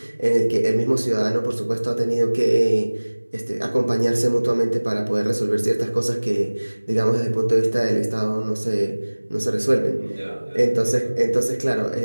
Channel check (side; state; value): both; inverted; correlation -1.00